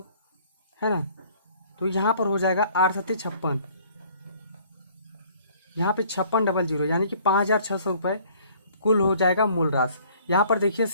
है ना, तो यहाँ पर हो जाएगा 8 7 56, यहाँ पे 5600, यानी कि 5600 रुपये कुल हो जाएगा मूल राशि। यहाँ पर देखिए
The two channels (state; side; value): inverted; both; correlation -0.56